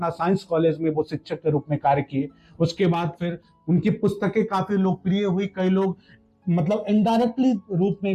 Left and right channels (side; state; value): both; identical; correlation 1.00